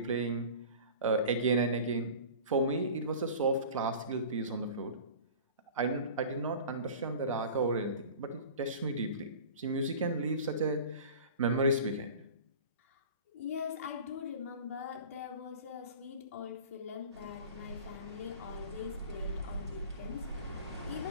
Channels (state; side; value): inverted; both; correlation -0.39